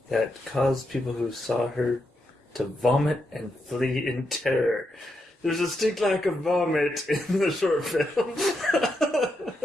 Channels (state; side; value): normal; both; correlation 0.83